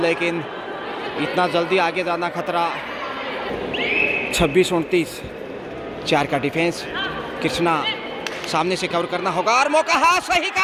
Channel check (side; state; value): both; identical; correlation 1.00